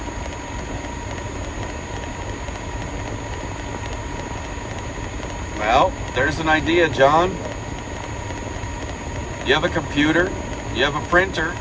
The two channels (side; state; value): both; identical; correlation 1.00